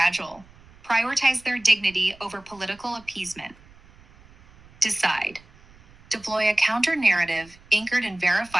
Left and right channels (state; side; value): noise; right; rumble, 25 dB below the sound